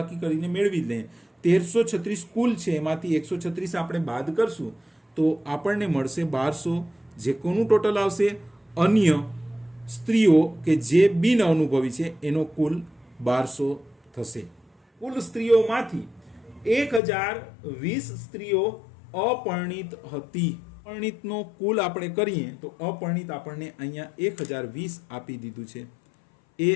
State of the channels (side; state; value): right; drops out; at 17.0 s